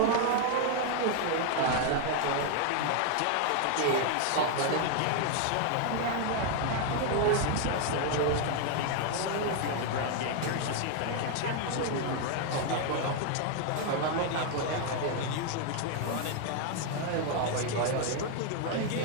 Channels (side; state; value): both; different; correlation 0.00